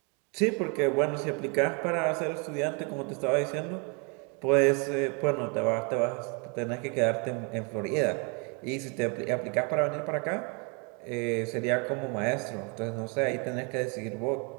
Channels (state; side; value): quieter; left; 34.0 dB